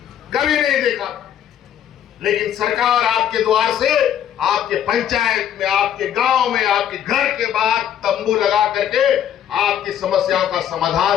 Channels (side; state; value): right; quieter; 10.0 dB